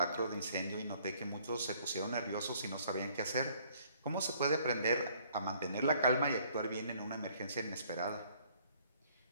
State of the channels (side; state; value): both; inverted; correlation -0.61